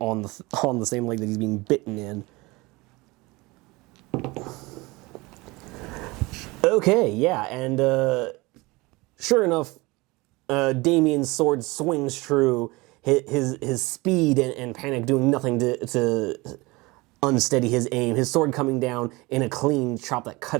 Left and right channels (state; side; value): quieter; left; 23.2 dB